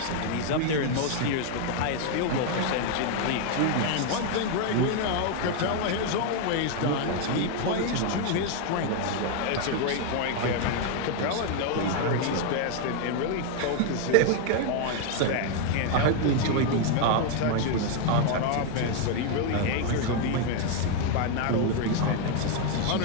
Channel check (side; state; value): both; different; correlation 0.00